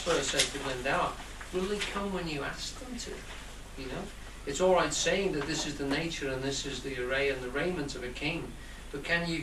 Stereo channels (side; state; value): both; identical; correlation 1.00